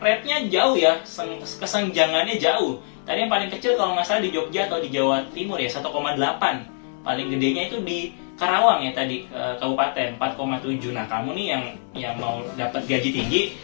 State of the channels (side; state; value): right; silent; digital silence